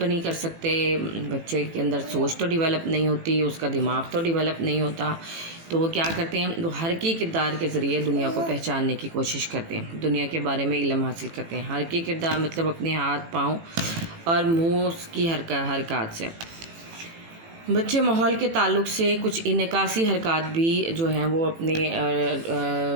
नहीं कर सकते, बच्चे के अंदर सोच तो डेवलप नहीं होती, उसका दिमाग तो डेवलप नहीं होता। तो वो क्या करते हैं, वो हरकी किरदार के ज़रिए दुनिया को पहचानने की कोशिश करते हैं, दुनिया के बारे में इल्म हासिल करते हैं। हरकी किरदार मतलब अपने हाथ पाँव और मुँह की हरकत से। बच्चे माहौल के ताल्लुक़ से कुछ इनकासी हरकत भी जो हैं वो अपने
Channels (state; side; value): late; left; 18 ms